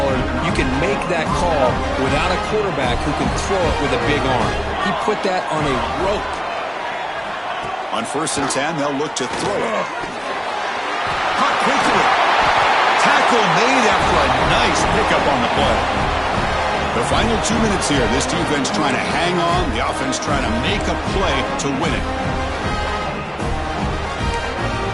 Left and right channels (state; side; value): identical; both; correlation 1.00